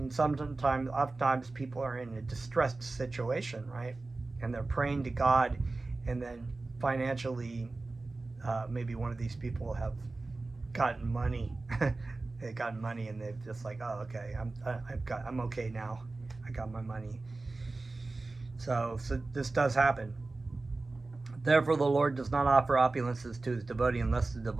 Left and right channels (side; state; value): left; quieter; 3.4 dB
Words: oftentimes people are in a distressed situation, right? And they're praying to God, and then financially, maybe one of these people have gotten money. They've gotten money, and they've just like, oh, okay, I'm okay now. I got my money. So this does happen. Therefore, the Lord does not offer opulences to his devotee unless the